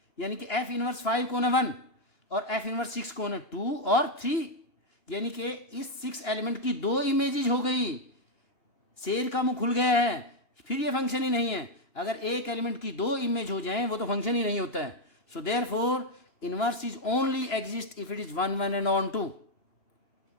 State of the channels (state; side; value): late; right; 2.9 ms